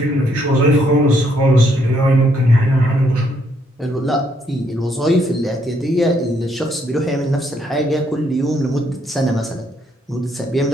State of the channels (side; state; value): both; normal; correlation 0.72